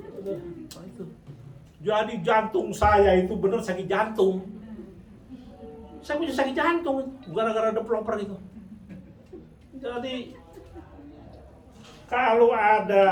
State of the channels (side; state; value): both; identical; correlation 1.00